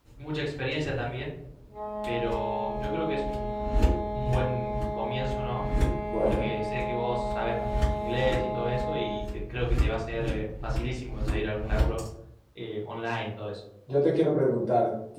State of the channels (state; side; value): identical; both; correlation 1.00